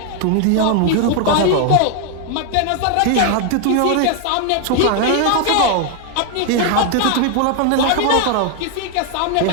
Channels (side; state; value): both; different; correlation 0.00